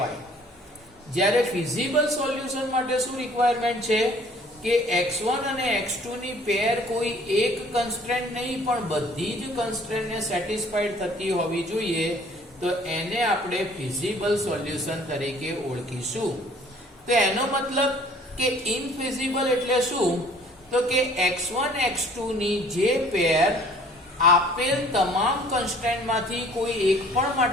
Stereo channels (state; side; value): normal; both; correlation 0.54